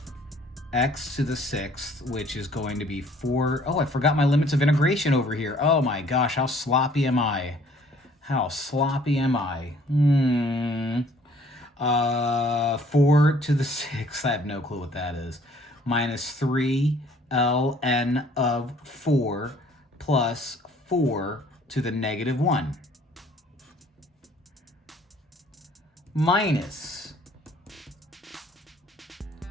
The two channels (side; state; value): both; normal; correlation 0.58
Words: x to the 6th, which is going to be 4. Oh, I forgot my limits of integration over here. Oh my gosh, how sloppy am I? How sloppy am I? 4 to the 6th, I have no clue what that is. Minus 3 ln of 4 plus 4 to the negative 1. Minus